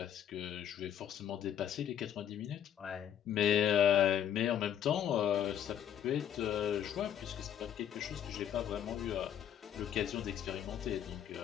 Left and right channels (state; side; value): quieter; right; 9.9 dB